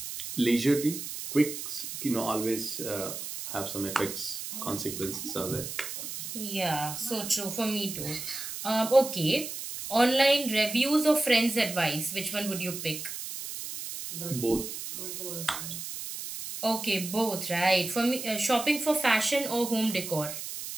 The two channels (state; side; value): noise; right; hiss, 7 dB below the sound